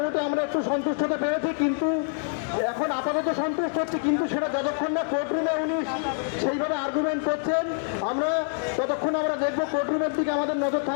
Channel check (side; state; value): right; silent; digital silence